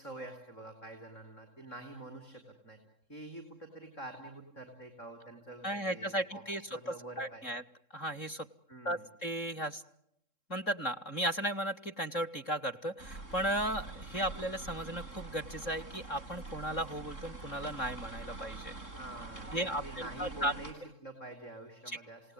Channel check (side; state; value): right; late; 3.7 ms